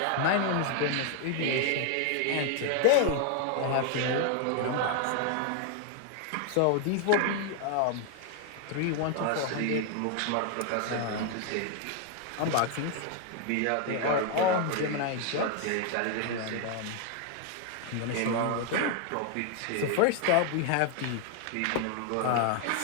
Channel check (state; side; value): different; both; correlation 0.00